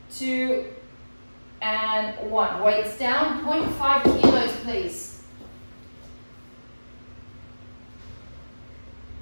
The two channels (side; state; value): both; inverted; correlation -1.00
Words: 2, and 1. Weights down, 0.5 kilos, please.